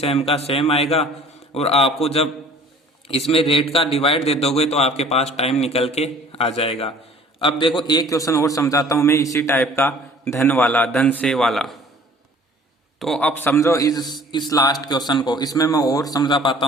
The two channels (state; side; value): normal; both; correlation 0.51